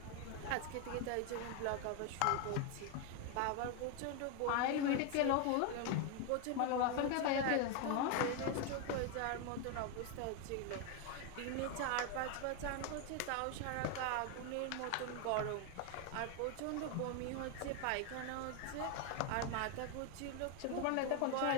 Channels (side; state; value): both; different; correlation 0.01